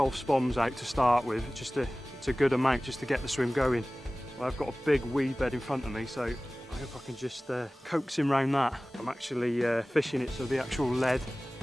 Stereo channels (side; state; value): both; normal; correlation 0.98